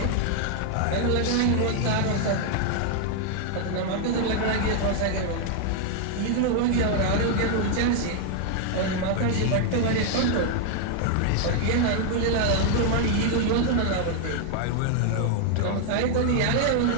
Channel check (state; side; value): different; both; correlation 0.00